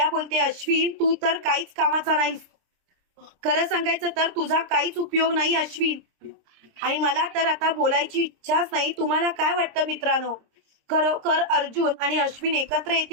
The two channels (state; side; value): late; left; 26 ms